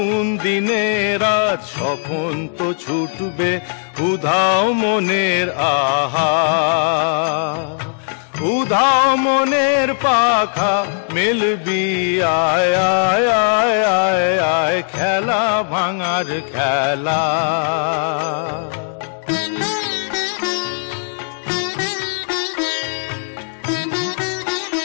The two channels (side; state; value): right; silent; digital silence